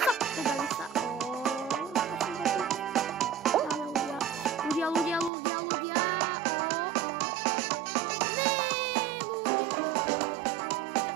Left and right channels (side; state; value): left; drops out; at 5.3 s